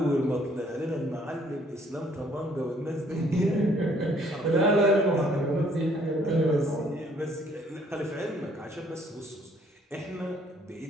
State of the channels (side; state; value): both; normal; correlation 0.63